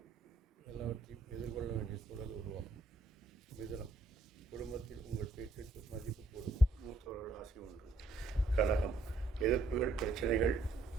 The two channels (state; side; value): quieter; left; 3.1 dB